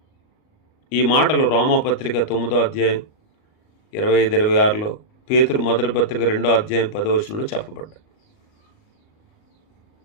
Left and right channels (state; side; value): late; right; 38 ms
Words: ఈ మాటలు రోమాపత్రిక 9వ అధ్యాయం 25-26లో, పేతురు మొదటి పత్రిక 2వ అధ్యాయం 10వ వచనంలో చెప్పబడ్డాయి.